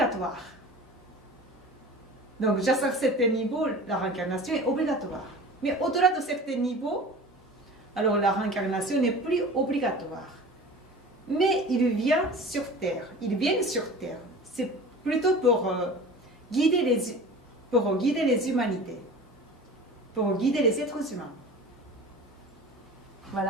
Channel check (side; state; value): both; normal; correlation 0.38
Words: Donc, jusqu'à certains niveaux, la réincarnation est obligatoire. Mais au-delà de certains niveaux, alors la réincarnation n'est plus obligatoire. Mais ils viennent sur Terre. C'est plutôt pour guider les humanités, pour guider les êtres humains.